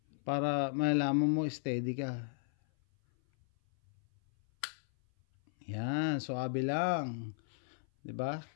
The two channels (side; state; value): right; silent; 54 dB below the other